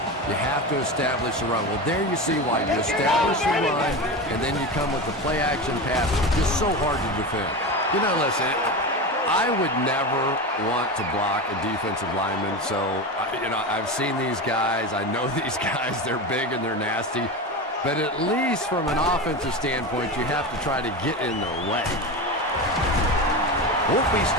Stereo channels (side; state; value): both; normal; correlation 0.23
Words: you have to establish a run. Well, there you see why. You establish a run, and then you come with the play-action pass. It's just so hard to defend. You know, listen, I would never want to block a defensive lineman. So, you know, I've seen these guys. I know these guys. They're big and they're nasty. But at least from an offensive standpoint, you have to try to get in their way. Won't be